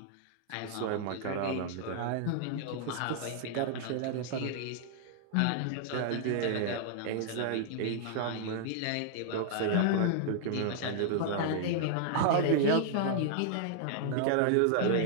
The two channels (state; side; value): different; both; correlation -0.01